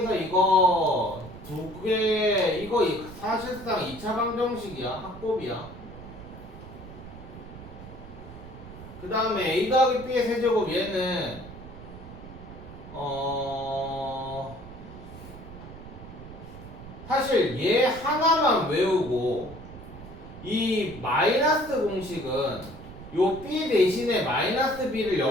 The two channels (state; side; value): noise; right; rumble, 14 dB below the sound